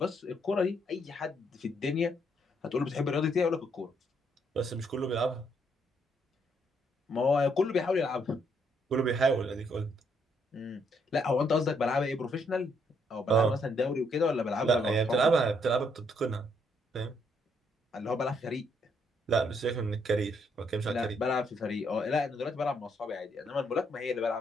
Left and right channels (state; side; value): normal; both; correlation 0.72